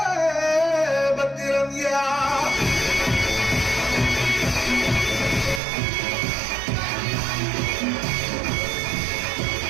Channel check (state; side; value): drops out; left; at 5.6 s